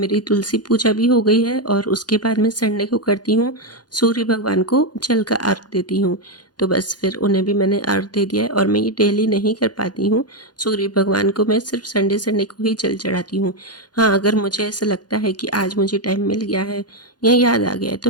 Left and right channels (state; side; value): late; right; 0.70 ms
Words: तुलसी पूजा भी हो गई है और उसके बाद मैं संडे को करती हूँ सूर्य भगवान को जल का अर्घ देती हूँ। तो बस फिर उन्हें भी मैंने अर्घ दे दिया है और मैं ये डेली नहीं कर पाती हूँ। सूर्य भगवान को मैं सिर्फ संडे संडे को ही जल चढ़ाती हूँ। हाँ, अगर मुझे ऐसा लगता है कि आज मुझे टाइम मिल गया है या याद आ गया है